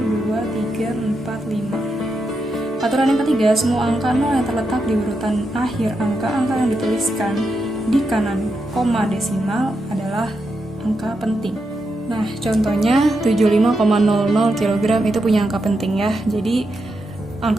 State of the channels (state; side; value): normal; both; correlation 0.85